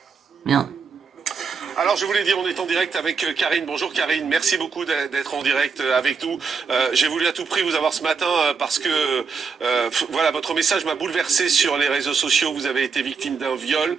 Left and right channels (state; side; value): quieter; left; 5.4 dB